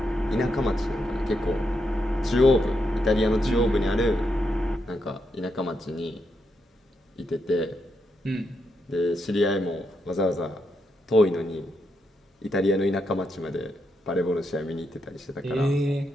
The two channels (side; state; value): both; normal; correlation 0.82